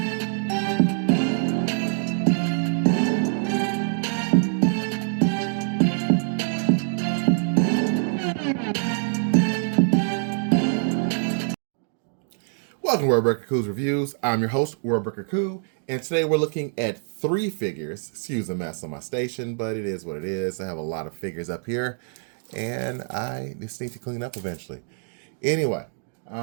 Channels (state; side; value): silent; left; 62 dB below the other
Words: Welcome to Worldbreaker Coo's Reviews. I'm your host, Worldbreaker Coo, and today we're looking at 3 figures. Excuse the mess on my station, but it is what it is. I have a lot of figures up here, and I just need to clean up eventually. Anyway,